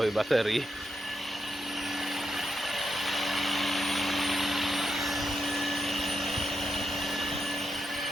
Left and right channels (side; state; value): both; normal; correlation 0.84